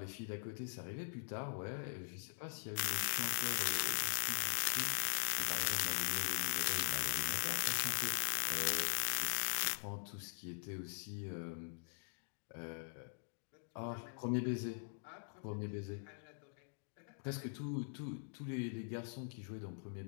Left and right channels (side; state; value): right; silent; digital silence